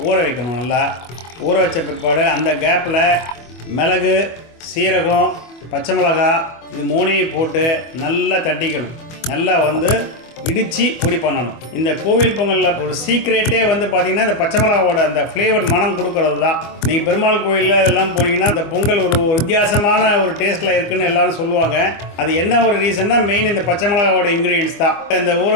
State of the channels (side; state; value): right; late; 24 ms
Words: ஊற வைக்கணும். நல்லா ஊற வச்ச பிற்பாடு அந்த கேப்பில் மிளகு, சீரகம், பச்சை மிளகாய் இது 3ஐயும் போட்டு நல்லா தட்டிக்கணும். நல்லா இடித்து பொடி பண்ணணும். இந்த கோவில் பொங்கலில் ஒரு சீக்ரெட்டே பார்த்திங்கன்னா இந்த பச்சை மிளகாவோட அந்த ஃப்ளேவர் மனம் கொடுக்கறது தான். நீங்கள் பெருமாள் கோயிலில் இதெல்லாம் போனீங்கன்னா இந்த பொங்கல் ஒரு வித்தியாசமான ஒரு டேஸ்ட்டில் இருக்குதுன்னு எல்லோரும் சொல்லுவாங்க. அது என்ன ஒரு ரீசன்னா மெயின் இந்த பச்சை மிளகாவோட இன்க்ரீடியன்ஸ் தான். இந்த ஊற